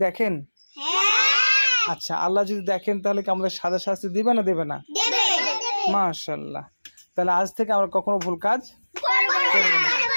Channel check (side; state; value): both; inverted; correlation -1.00